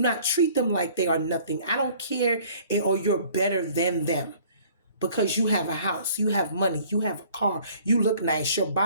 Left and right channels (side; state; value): both; inverted; correlation -0.54